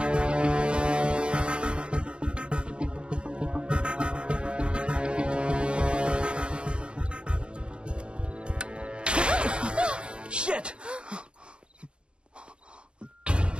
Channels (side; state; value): left; late; 0.055 ms